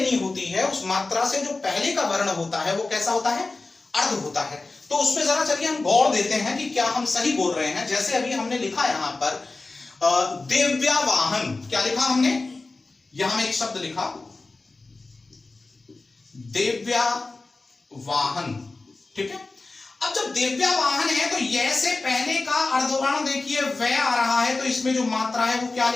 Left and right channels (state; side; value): quieter; right; 3.5 dB